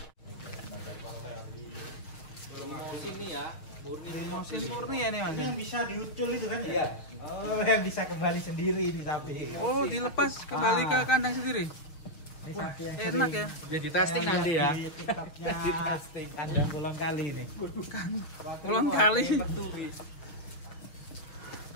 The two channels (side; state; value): right; late; 6.4 ms